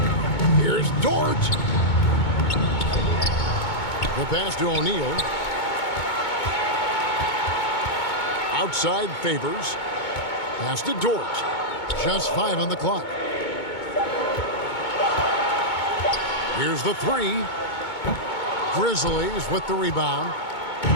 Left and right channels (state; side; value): late; right; 2.2 ms